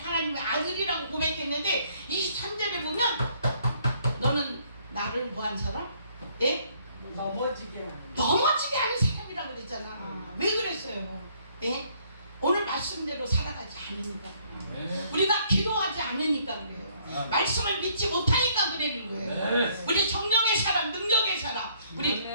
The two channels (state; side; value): inverted; both; correlation -0.65